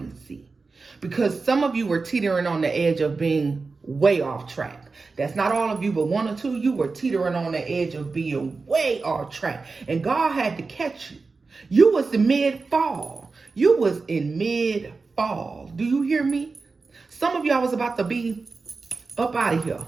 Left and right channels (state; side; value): quieter; left; 4.2 dB